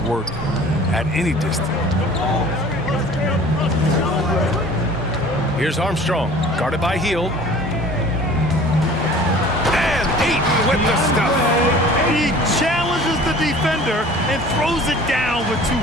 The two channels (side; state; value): both; normal; correlation 0.46